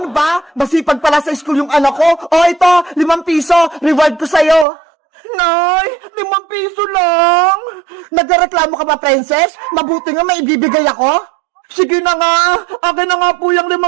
ba? Masipag pala sa school yung anak ko. O ito, 5 piso. Reward ko sa'yo. Nay, 5 piso lang. Nagreklamo ka ba, Princess? Mabuti nga may ibibigay ako. Sige na nga. Akin na nga po yung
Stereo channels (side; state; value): left; drops out; at 4.7 s